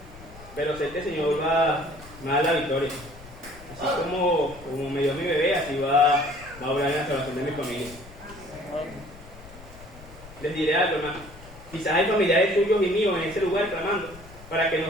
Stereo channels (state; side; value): noise; left; rumble, 19 dB below the sound